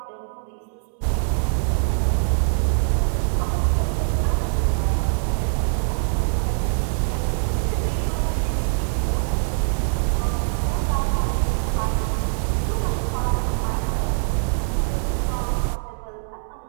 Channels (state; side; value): silent; left; 63 dB below the other